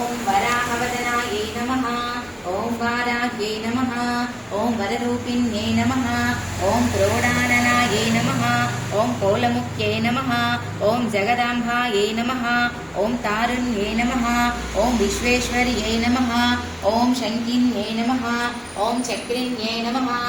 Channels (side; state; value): both; identical; correlation 1.00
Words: वराहवदनायै नमः। ओम वाराह्यै नमः। ओम वररूपिण्यै नमः। ओम क्रोडाननायै नमः। ओम कोलमुख्यै नमः। ओम जगदाम्बायै नमः। ओम तारुण्यै नमः। ओम विश्वेश्वर्यै नमः। ओम शङ्किन्यै नमः। ओम चक्रिण्यै नमः।